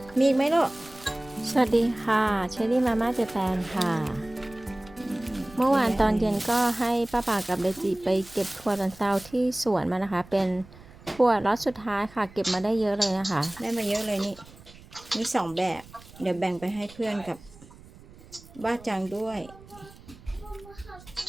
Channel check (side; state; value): right; noise; rumble, 21 dB below the sound